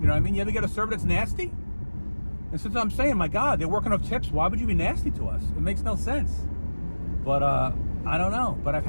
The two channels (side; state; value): both; inverted; correlation -1.00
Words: You ever get a server that's nasty? And since I'm saying, my God, they're working off tips, why would you be nasty to us? It makes no sense. But I don't know. But I've